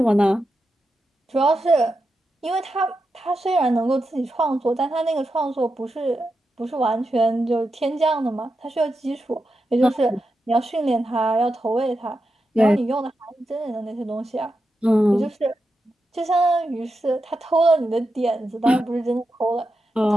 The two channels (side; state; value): both; normal; correlation 0.88